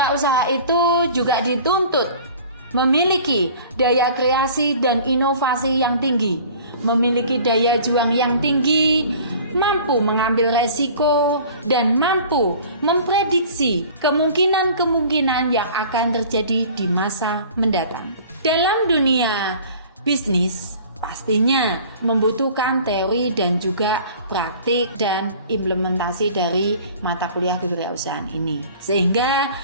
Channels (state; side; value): inverted; both; correlation -0.46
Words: itu juga dituntut memiliki daya kreasi dan inovasi yang tinggi, memiliki daya juang yang tinggi, mampu mengambil resiko, dan mampu memprediksi kemungkinan-kemungkinan yang akan terjadi di masa mendatang. Dalam dunia bisnis, pastinya membutuhkan teori dan juga praktik dan implementasi dari mata kuliah kewirausahaan ini. Sehingga